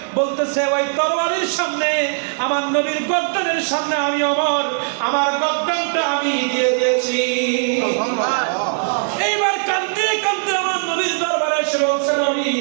বলতেছে ওই তরবারির সামনে, আমার নবীর গর্দানের সামনে আমি ওমর আমার গর্দানটা আমি দিয়ে দিয়েছি। এইবার কাঁদতে কাঁদতে আমার নবীর দরবারে এসে বলছেন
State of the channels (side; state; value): left; silent; 66 dB below the other